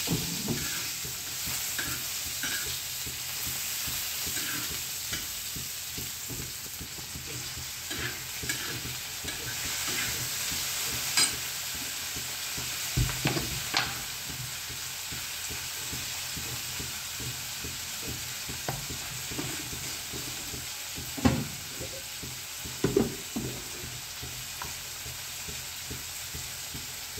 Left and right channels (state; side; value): identical; both; correlation 1.00